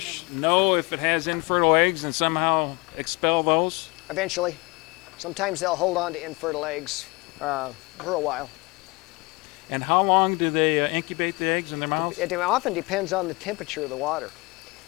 know if it has infertile eggs and somehow expel those? Eventually, sometimes they'll hold on to infertile eggs for a while. And how long do they incubate the eggs in their mouths? It often depends on the temperature of the water.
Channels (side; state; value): right; quieter; 26.2 dB